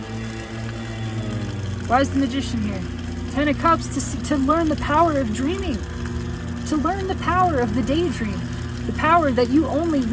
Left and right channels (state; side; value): identical; both; correlation 1.00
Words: Why is the Magician here? 10 of Cups to learn the power of dreaming, to learn the power of the daydream. The power that you only